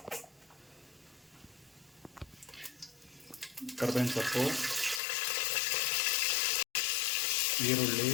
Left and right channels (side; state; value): right; drops out; at 5.0 s